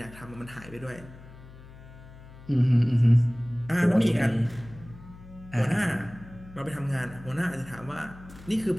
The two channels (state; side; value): noise; left; hum, 18 dB below the sound